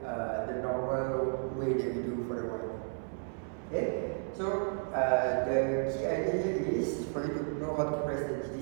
the normal way that you do for the y. Okay, so the key idea here is for you to know how to press the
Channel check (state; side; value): silent; left; 56 dB below the other